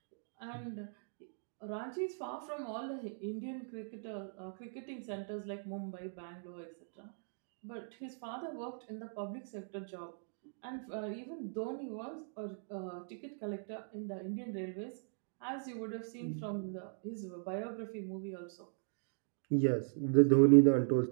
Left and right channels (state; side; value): silent; left; digital silence